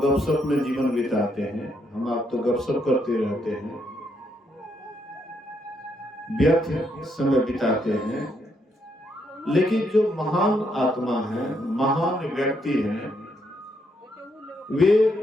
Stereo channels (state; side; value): normal; both; correlation 0.76